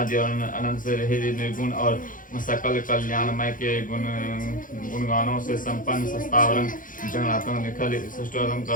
और अनंत से रहित निर्गुण और सकल कल्याणमय के गुणगानों से संपन्न सस्तावरम जगन्नाथम निखल सृष्टोत्तम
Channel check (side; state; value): right; late; 0.39 ms